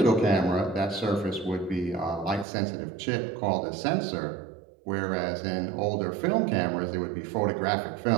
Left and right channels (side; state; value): left; drops out; at 2.5 s